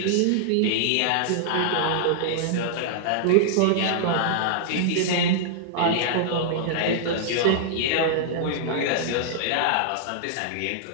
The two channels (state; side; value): different; both; correlation -0.01